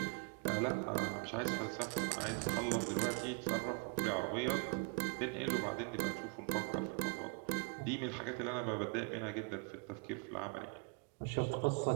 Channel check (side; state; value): left; quieter; 35.1 dB